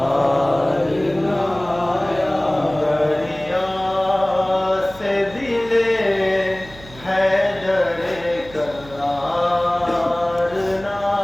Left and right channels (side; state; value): right; noise; hum, 19 dB below the sound